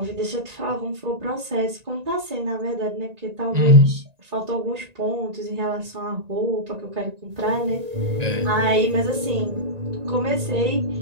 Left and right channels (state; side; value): late; left; 1.9 ms